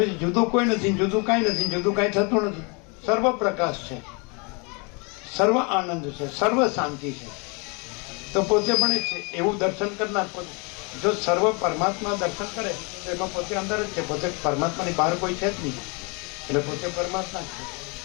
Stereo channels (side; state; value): right; quieter; 31.8 dB